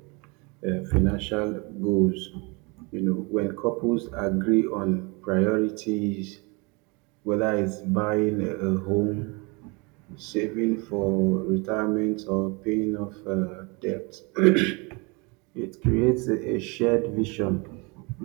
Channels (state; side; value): quieter; left; 29.1 dB